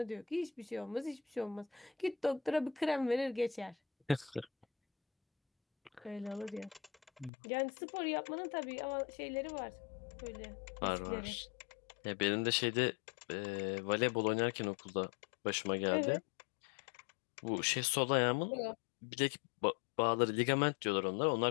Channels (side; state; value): right; drops out; at 7.3 s